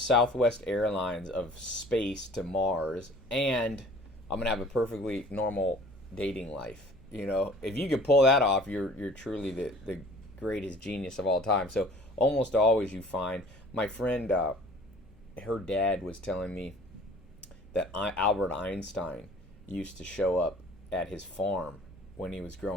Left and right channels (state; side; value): normal; both; correlation 0.49